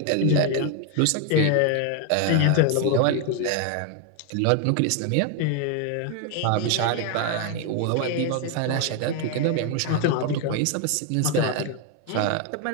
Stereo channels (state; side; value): different; both; correlation 0.01